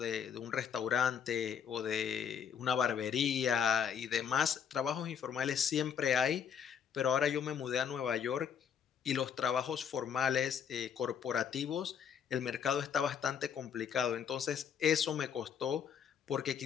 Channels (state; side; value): quieter; right; 7.7 dB